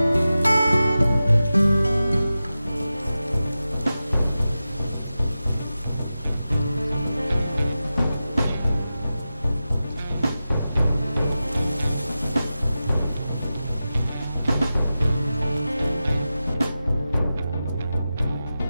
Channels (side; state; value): both; inverted; correlation -0.93